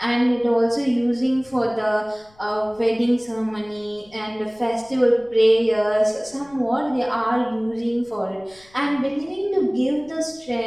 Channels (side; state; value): left; noise; rumble, 29 dB below the sound